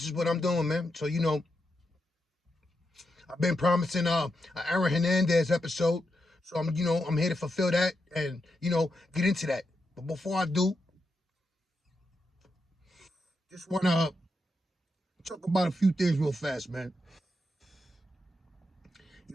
is what I'm doing, man. So, I've been promising an Aaron Hernandez episode. So I'm here to fulfill that and, get into that. But before I do, just want to talk about a few things real fast, man.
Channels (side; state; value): both; normal; correlation 0.85